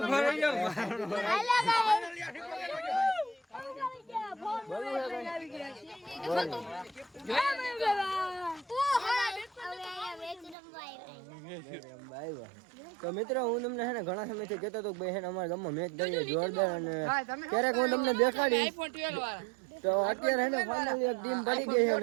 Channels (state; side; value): drops out; left; at 10.6 s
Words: તો મિત્રો હું તમને હે ને ઘણા સમયથી કહેતો હતો કે ભાઈ હે ને અમારા ગામમાં મેચ દઈએ જોરદાર અને ક્યારેક હું તમને દેખાડીશ તો અત્યારે હે ને ફાઇનલી એક ટીમ પડી ગઈ છે